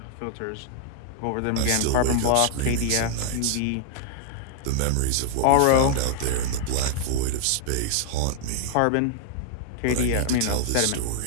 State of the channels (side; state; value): both; different; correlation 0.00